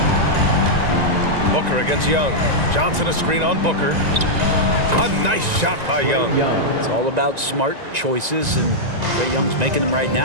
Booker against Young. Johnson a screen on Booker. A nice shot by Young. It's all about smart choices, and Trae Young's making them right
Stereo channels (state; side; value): late; left; 1.9 ms